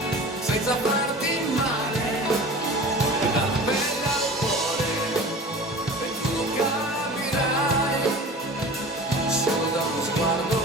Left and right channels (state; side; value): normal; both; correlation 0.38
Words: senza farti male. E dalla pelle al cuore, e tu lo capirai, solo da uno sguardo